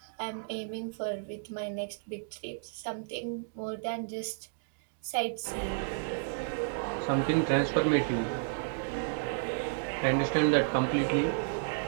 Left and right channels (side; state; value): left; silent; digital silence